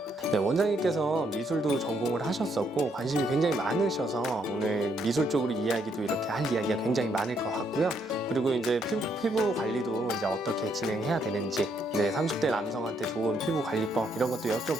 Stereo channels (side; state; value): both; normal; correlation 0.73